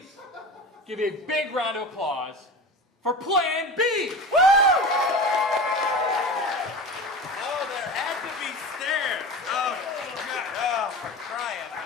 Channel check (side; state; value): both; normal; correlation 0.31